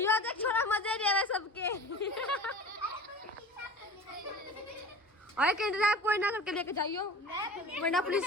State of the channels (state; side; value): normal; both; correlation 0.37